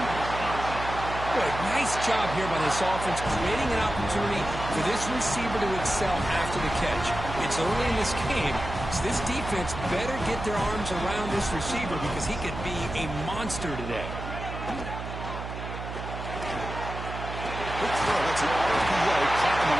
Good. Nice job here by this offense, creating an opportunity for this receiver to excel after the catch. It's early in this game, so this defense better get their arms around this receiver because he could be a monster today. Quick throw. It's an RPO caught on the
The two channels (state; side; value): noise; right; hum, 8 dB below the sound